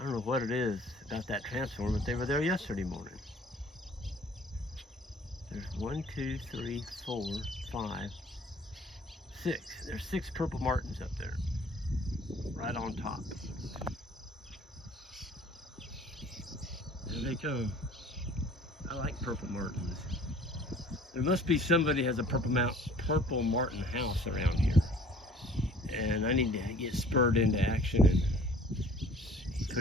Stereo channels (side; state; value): both; normal; correlation 0.51